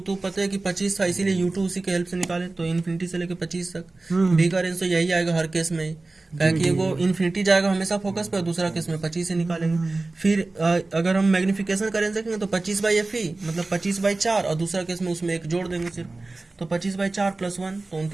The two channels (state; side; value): quieter; left; 3.3 dB